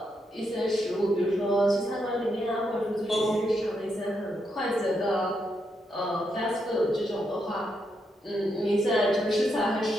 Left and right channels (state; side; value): normal; both; correlation 0.81